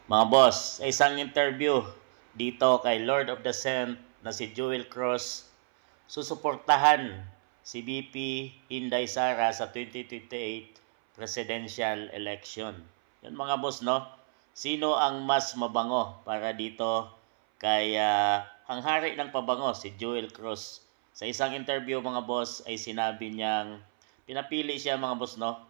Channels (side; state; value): left; silent; 58 dB below the other